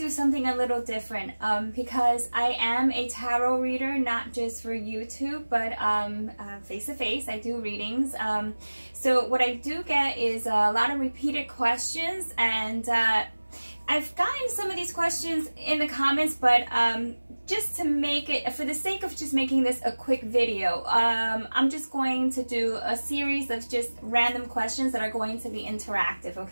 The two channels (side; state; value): both; inverted; correlation -1.00